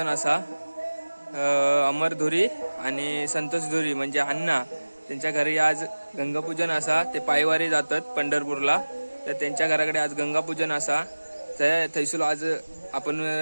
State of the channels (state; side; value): inverted; both; correlation -1.00